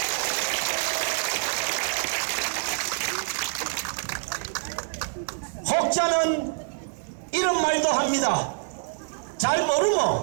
혹자는 이런 말도 합니다. 잘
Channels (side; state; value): left; silent; 57 dB below the other